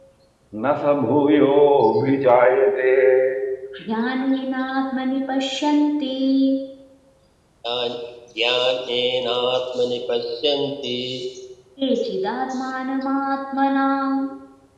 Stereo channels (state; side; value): identical; both; correlation 1.00